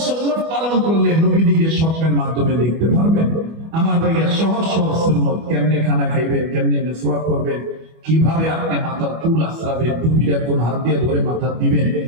সুন্নাত পালন করলে নবীদিকে স্বপ্নের মাধ্যমে দেখতে পারবেন? আমার ভাইয়া সহজ সহজ সুন্নাত, কেমনে খানা খাইবেন, কেমনে মিসওয়াক করবেন, কিভাবে আপনি মাথার চুল আশ্রাবেন, টুপিটা কোন হাত দিয়ে ধরে মাথা দিবেন,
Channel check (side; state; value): left; late; 25 ms